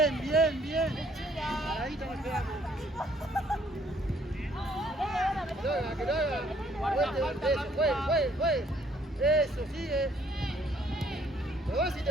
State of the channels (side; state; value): both; normal; correlation 0.64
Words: bien, bien. Paradito nos quedamos. Que lo haga, que lo haga. Eso, juegue. Eso, sigue. Lo vas si